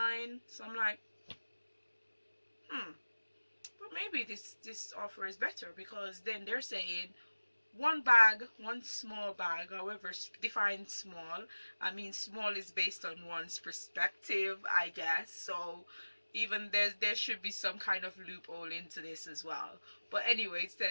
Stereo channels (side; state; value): both; inverted; correlation -1.00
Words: So I'm like, but maybe this offer is better, because then they're saying one bag, one small bag, however define small. I mean, small is based on one's perspective, I guess. So even there should be some kind of loophole into this as well. But anyway, it